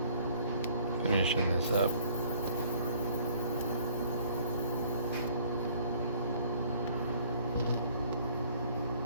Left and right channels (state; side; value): inverted; both; correlation -0.58